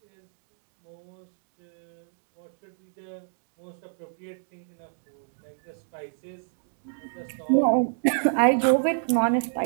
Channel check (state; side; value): silent; left; digital silence